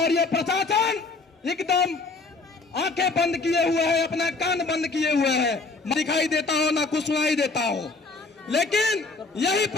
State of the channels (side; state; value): right; quieter; 3.8 dB